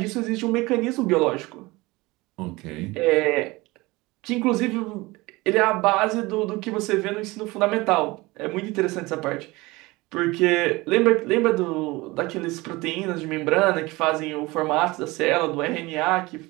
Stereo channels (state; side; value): quieter; left; 21.9 dB